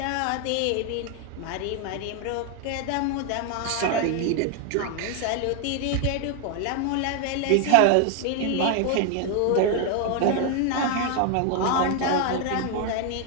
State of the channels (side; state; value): both; different; correlation 0.00